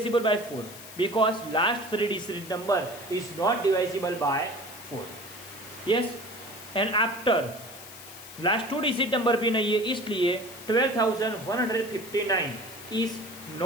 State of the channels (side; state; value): left; noise; hiss, 15 dB below the sound